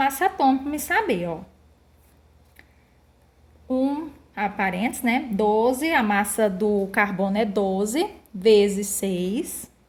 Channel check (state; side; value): identical; both; correlation 1.00